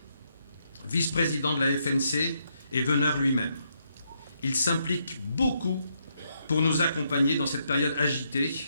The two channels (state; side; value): inverted; both; correlation -0.77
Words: vice-président de la FNC, et Veneur lui-même. Il s'implique beaucoup pour nous accompagner dans cette période agitée.